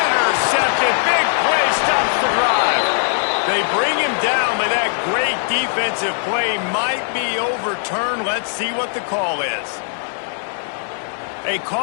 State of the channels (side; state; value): right; silent; digital silence